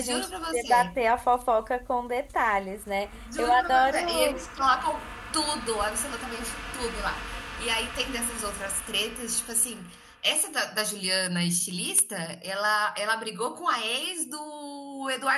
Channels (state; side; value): identical; both; correlation 1.00